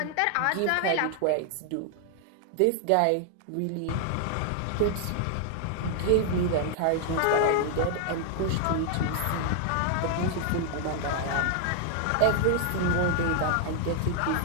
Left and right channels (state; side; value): different; both; correlation 0.00